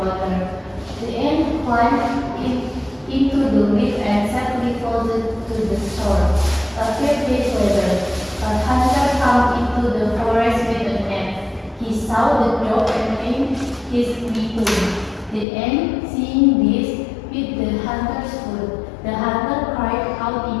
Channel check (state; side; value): drops out; right; at 15.5 s